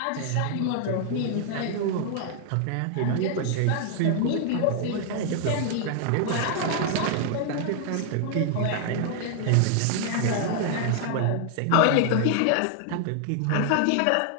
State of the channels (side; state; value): both; different; correlation 0.00